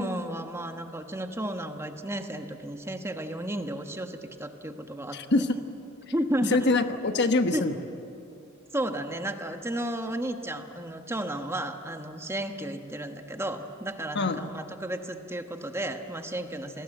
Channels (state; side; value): normal; both; correlation 0.54